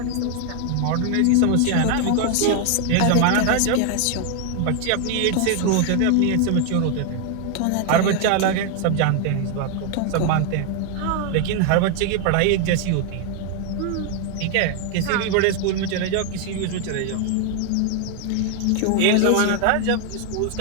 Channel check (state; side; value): different; both; correlation 0.00